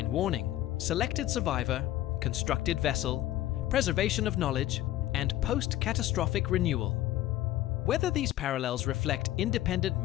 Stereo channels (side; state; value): right; quieter; 14.3 dB